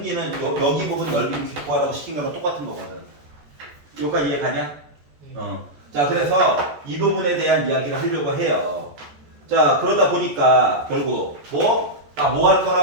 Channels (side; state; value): left; late; 14 ms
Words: 여기 부분 넓이를 기구하라고 시킨 거랑 똑같은 거거든. 여기까지 이해가냐? 자, 그래서 이 부분에 대한 이야기를 하려고 해요. 자, 그러다 보니까 결국 뭐 할